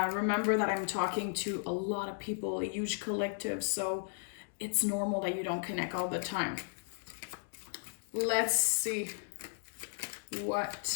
that I'm talking to a lot of people, a huge collective, so it's normal that you don't connect all the time. Let's see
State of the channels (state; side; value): silent; right; digital silence